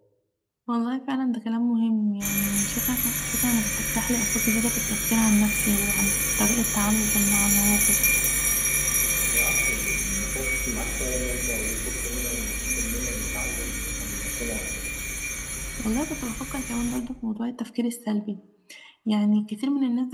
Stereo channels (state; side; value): identical; both; correlation 1.00